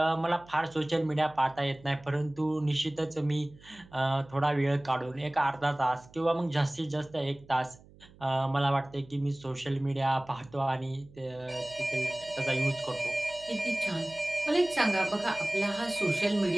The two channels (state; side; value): noise; right; hum, 24 dB below the sound